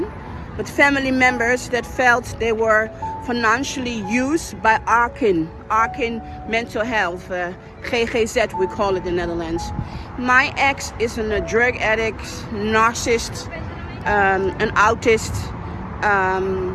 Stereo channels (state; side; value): identical; both; correlation 1.00